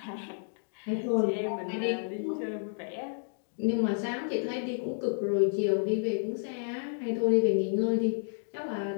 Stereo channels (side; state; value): right; silent; digital silence